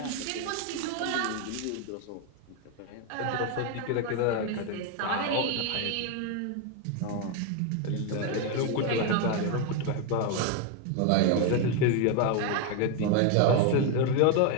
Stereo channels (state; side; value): different; both; correlation 0.01